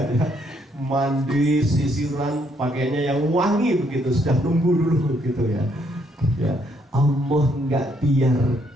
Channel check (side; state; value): both; normal; correlation 0.71